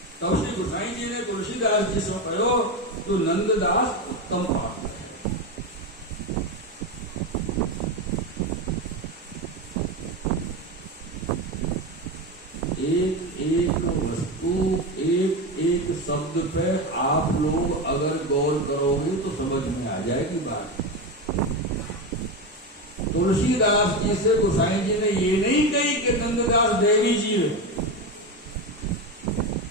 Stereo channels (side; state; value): both; normal; correlation 0.17